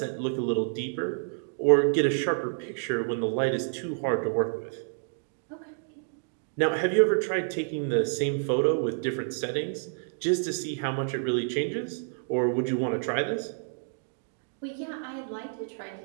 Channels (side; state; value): left; silent; digital silence